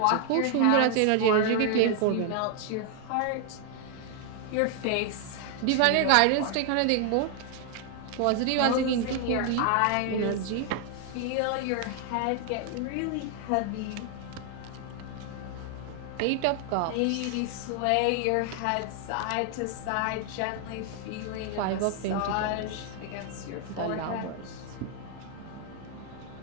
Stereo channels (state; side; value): different; both; correlation 0.00